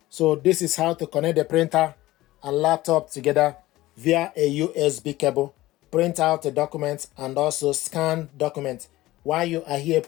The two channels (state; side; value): quieter; right; 17.4 dB